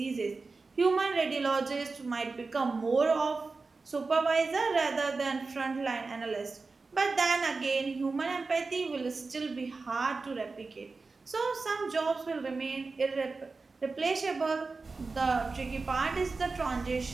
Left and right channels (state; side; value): quieter; left; 4.0 dB